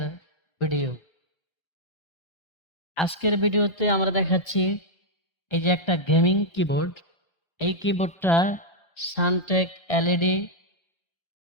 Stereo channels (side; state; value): right; late; 1.3 ms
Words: ভিডিও। আজকের ভিডিওতে আমরা দেখাচ্ছি এই যে একটা গেমিং কিবোর্ড। এই কিবোর্ডটা সানটেক এলইডি